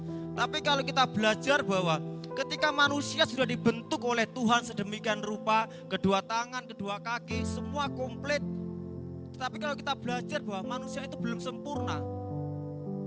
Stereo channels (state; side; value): identical; both; correlation 1.00